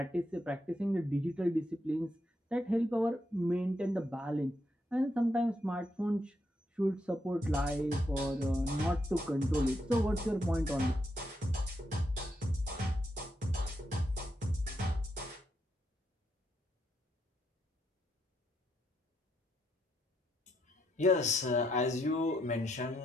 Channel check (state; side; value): normal; both; correlation 0.79